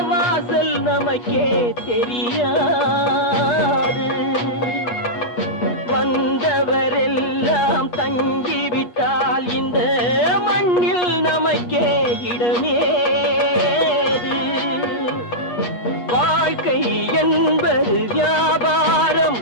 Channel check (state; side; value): late; right; 8.4 ms